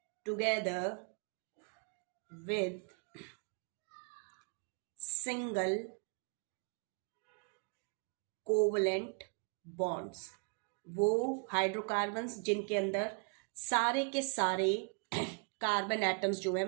together with single covalent bonds. वो हाइड्रोकार्बन्स जिनके अंदर सारे के सारे कार्बन एटम्स जो है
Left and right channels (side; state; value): left; quieter; 37.7 dB